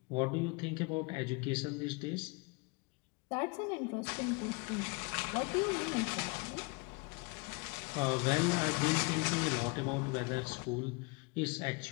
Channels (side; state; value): right; quieter; 29.6 dB